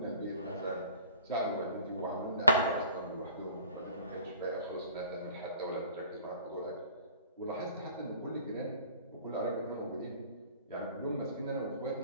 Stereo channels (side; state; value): both; inverted; correlation -0.49